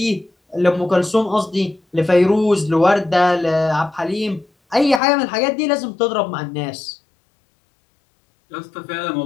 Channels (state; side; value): drops out; right; at 5.0 s